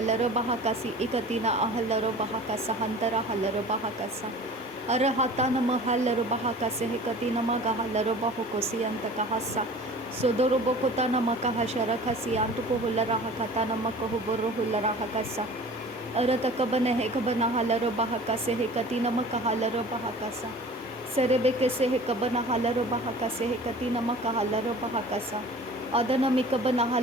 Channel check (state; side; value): normal; both; correlation 0.43